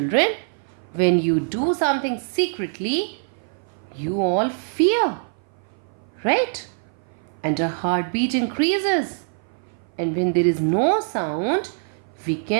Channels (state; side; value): silent; left; 57 dB below the other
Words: When you do something secretly, you all fear, right? And our heartbeat increases. And when there is no sound, we